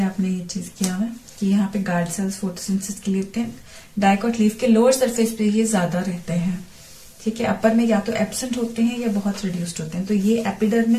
ये चीज किया है कि यहाँ पे गार्ड सेल्स फोटोसिंथेसिस के लिए होते हैं. डाइकॉट लीफ के लोअर सरफेस पे ये ज्यादा रहते हैं. ठीक है. अपर में या तो एब्सेंट होते हैं या बहुत रिड्यूस्ड होते हैं. तो ये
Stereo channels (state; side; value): identical; both; correlation 1.00